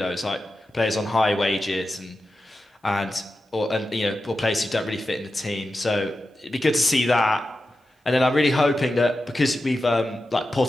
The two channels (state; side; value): normal; both; correlation 0.91